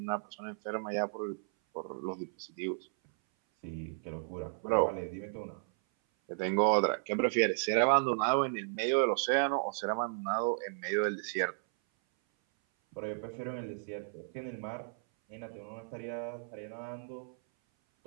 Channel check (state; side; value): silent; left; 55 dB below the other